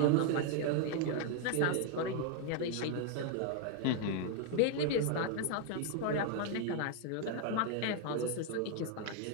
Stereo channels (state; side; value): different; both; correlation 0.00